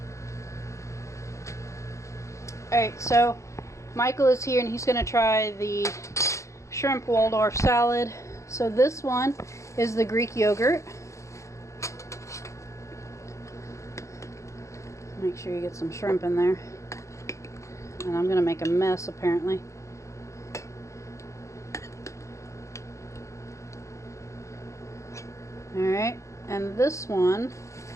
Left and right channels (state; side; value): late; right; 0.15 ms